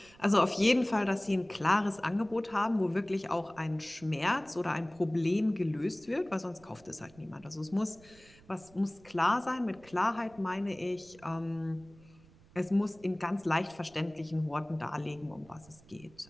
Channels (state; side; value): noise; right; rumble, 25 dB below the sound